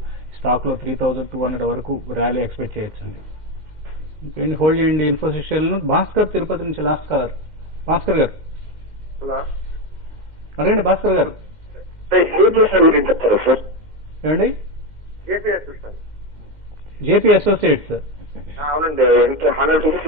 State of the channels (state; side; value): late; right; 2.1 ms